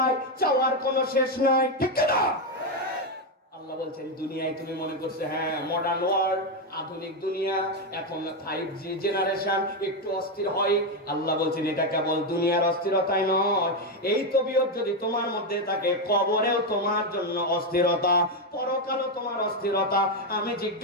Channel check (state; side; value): normal; both; correlation 0.06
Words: চাওয়ার কোনো শেষ নাই। ঠিক না? আল্লাহ বলছেন দুনিয়ায় তুমি মনে করছে হ্যাঁ মডার্ন ওয়ার্ল্ড, আধুনিক দুনিয়া, এখন 5G জেনারেশন, একটু অস্থির হয়। আল্লাহ বলছেন এটা কেবল দুনিয়ার অস্থিরতাই নয়, এই তবিয়ত যদি তোমার মধ্যে থাকে, কবরেও তোমার জন্য অস্থিরতা, পরকালও তোমার অস্থিরতা। আমি